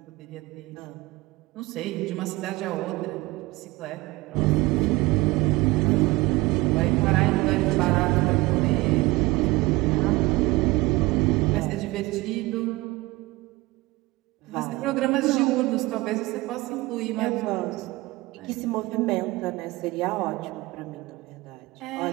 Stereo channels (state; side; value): quieter; left; 21.2 dB